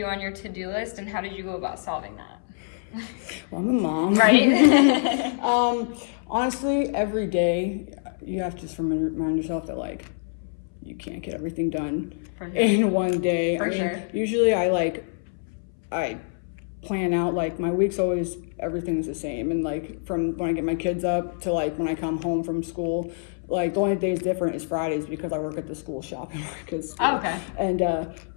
on your to-do list, and how did you go about solving that? well, I'm a mom. Right? Honestly, every day you have to just remind yourself that like you can't get everything done For sure. in one day. For sure. Usually I plan out like my week's always everything's the same, and like from when I get my kids up to like when I come home from school. Like the only days different is Fridays because I work at the school shop. Oh, okay. And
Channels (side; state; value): right; silent; 61 dB below the other